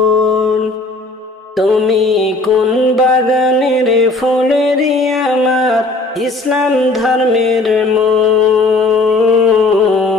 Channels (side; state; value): right; quieter; 3.2 dB